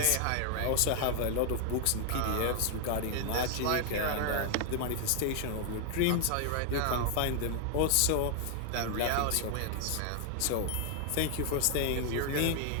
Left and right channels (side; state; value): both; different; correlation 0.00